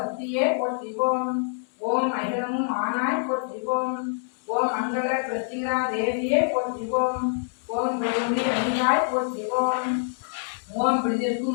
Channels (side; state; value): right; silent; digital silence